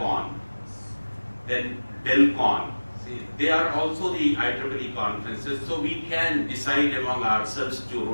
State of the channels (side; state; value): both; inverted; correlation -1.00